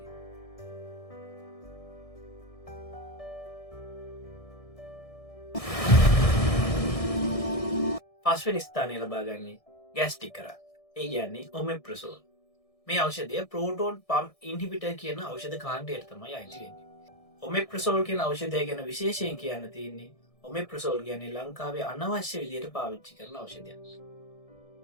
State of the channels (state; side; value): late; right; 1.6 ms